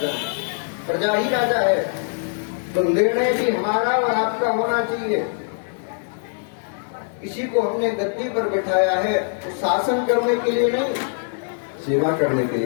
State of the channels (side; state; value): right; silent; 64 dB below the other